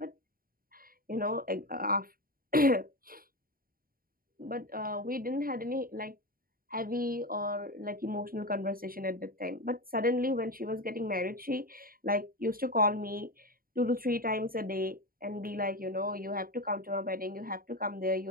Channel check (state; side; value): late; left; 0.42 ms